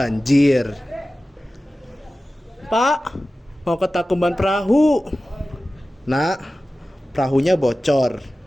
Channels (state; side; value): normal; both; correlation 0.96